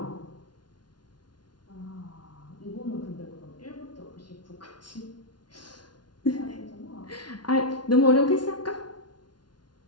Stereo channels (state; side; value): late; right; 0.70 ms